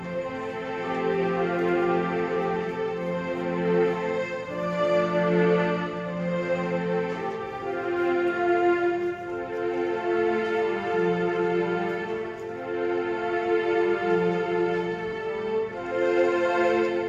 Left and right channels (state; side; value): identical; both; correlation 1.00